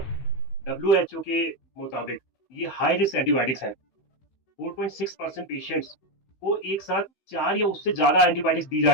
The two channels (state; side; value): late; right; 15 ms